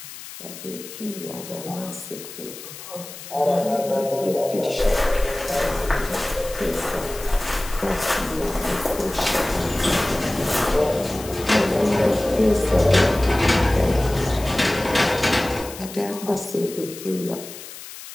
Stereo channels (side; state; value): left; noise; hiss, 13 dB below the sound